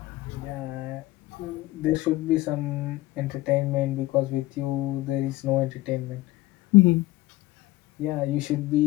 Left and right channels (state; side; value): quieter; right; 17.9 dB